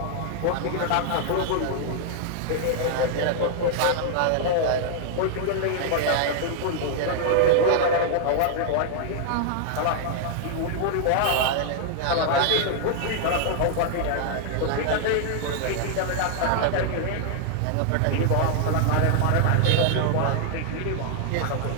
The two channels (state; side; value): different; both; correlation -0.01